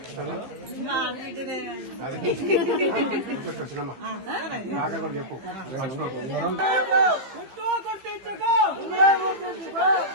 సినిమా నాకే కూడా చెప్పు.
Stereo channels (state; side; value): late; left; 15 ms